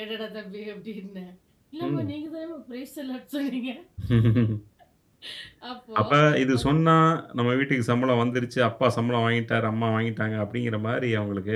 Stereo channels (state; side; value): identical; both; correlation 1.00